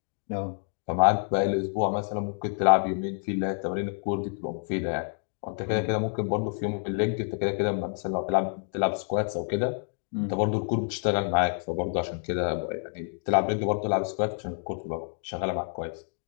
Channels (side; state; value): right; silent; 59 dB below the other